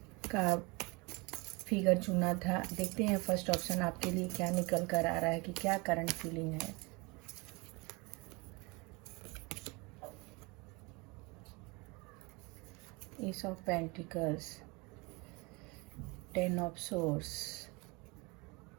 का फिगर चुना था, देखते हैं फर्स्ट ऑप्शन आपके लिए क्या निकल कर आ रहा है कि क्या करंट फीलिंग है। S of pentacles, 10 of source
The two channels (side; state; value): left; quieter; 27.2 dB